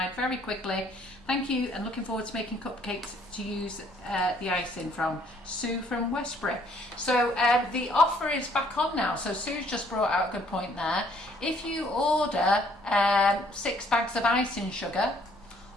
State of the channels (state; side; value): normal; both; correlation 0.63